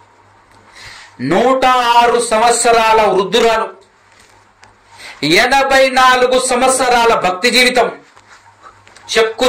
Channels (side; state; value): both; identical; correlation 1.00